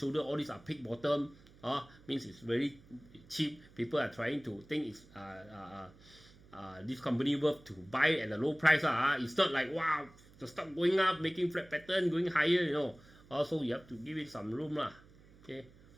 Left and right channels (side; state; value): right; noise; hum, 24 dB below the sound